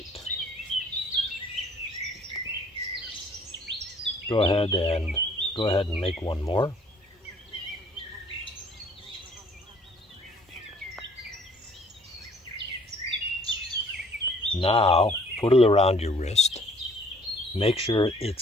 Go ahead and make 1 more. Now, put it around your wrist. Make sure it's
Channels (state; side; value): normal; both; correlation 0.57